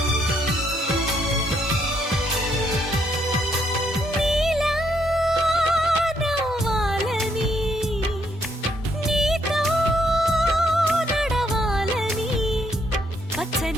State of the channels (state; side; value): normal; both; correlation 0.72